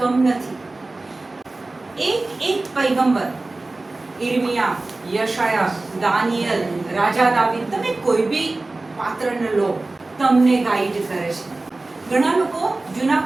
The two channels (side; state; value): left; quieter; 3.1 dB